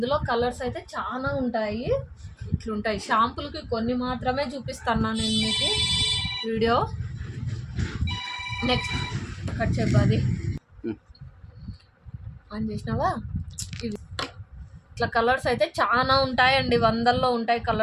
కలర్స్ అయితే చాలా ఉంటాయి. ఇట్లుంటాయి. షాంపులకి కొన్ని మాత్రమే చూపిస్తాను నేను మీకు వీడియో. నెక్స్ట్ కట్ చెప్పాలి ఆన్ చేసినావా? ఇవి ఇట్లా కలర్స్ అయితే చాలా ఉంటాయండి, వందల్లో ఉంటాయి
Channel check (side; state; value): both; identical; correlation 1.00